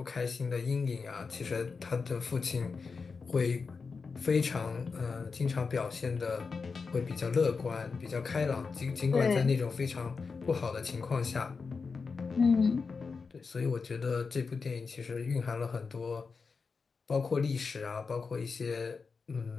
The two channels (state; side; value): quieter; right; 4.9 dB